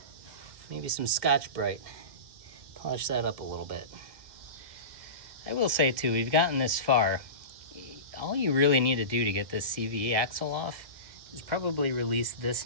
Maybe some Scotch-Brite. Polish that up a little bit. I will say too, we've gotten this far. All you really need to do to get this CVE axle off is probably release this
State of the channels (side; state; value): left; late; 1.7 ms